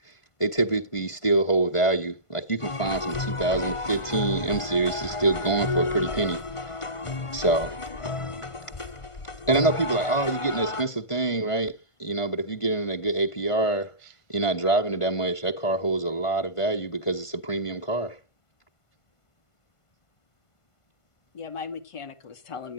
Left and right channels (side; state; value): right; late; 1.5 ms